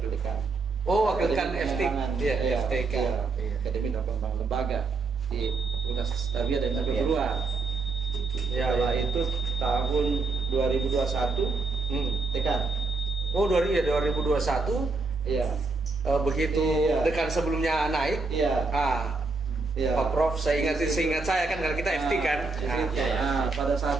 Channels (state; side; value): quieter; left; 4.0 dB